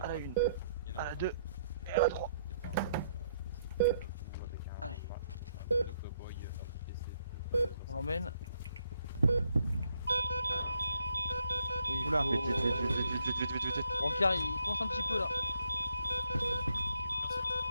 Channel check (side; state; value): both; inverted; correlation -0.73